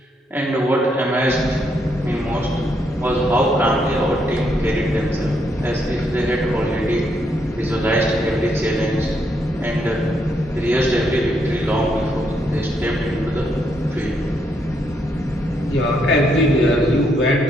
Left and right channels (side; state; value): both; normal; correlation 0.76